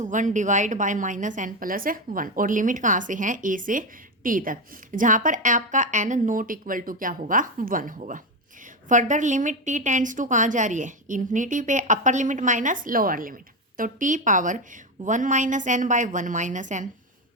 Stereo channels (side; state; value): both; normal; correlation 0.13